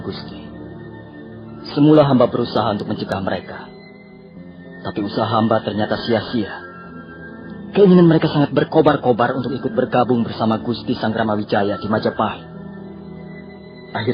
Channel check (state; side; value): identical; both; correlation 1.00